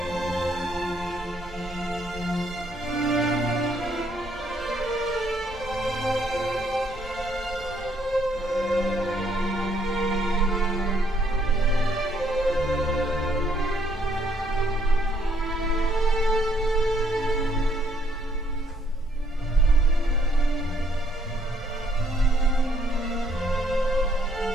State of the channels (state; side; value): normal; both; correlation 0.69